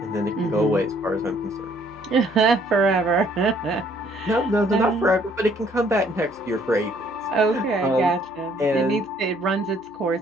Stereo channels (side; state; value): both; normal; correlation 0.63